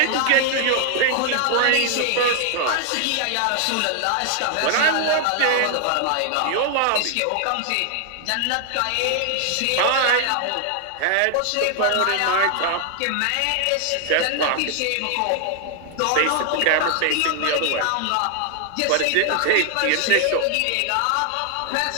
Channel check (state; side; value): different; both; correlation 0.00